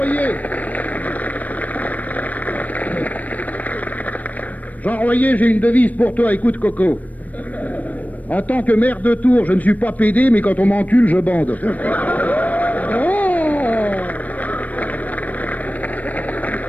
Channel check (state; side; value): late; right; 0.074 ms